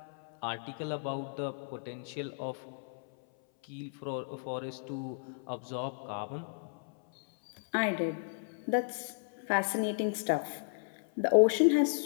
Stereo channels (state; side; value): silent; right; 55 dB below the other